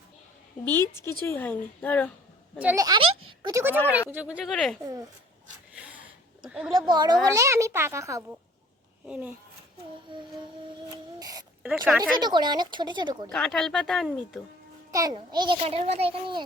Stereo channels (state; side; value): normal; both; correlation 0.52